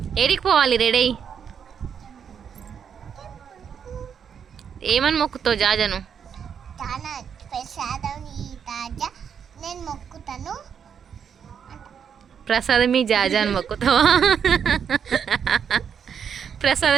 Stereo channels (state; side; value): quieter; left; 7.6 dB